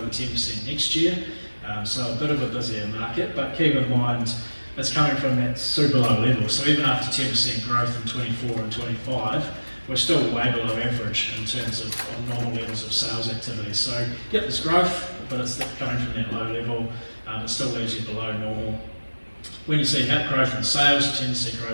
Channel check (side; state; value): both; inverted; correlation -1.00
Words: 10% next year. So a bit of a busier market, but keep in mind it's coming from that super low level. So even after 10% growth in 24 and 25, we're still way below average in terms of normal levels of sales activity. So yep, there's growth, but it's coming from that low level. It still leaves you below normal. When you see growth in sales, you tend to see